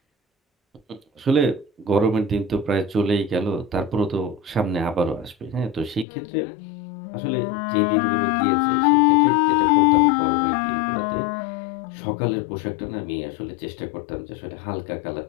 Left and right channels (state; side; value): drops out; right; at 6.1 s